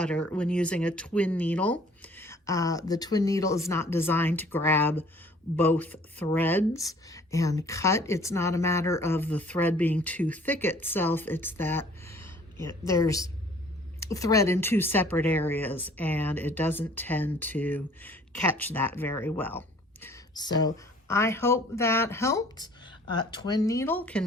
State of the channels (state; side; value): normal; both; correlation 0.54